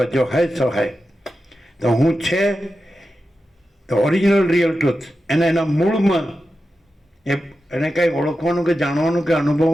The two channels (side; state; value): both; normal; correlation 0.91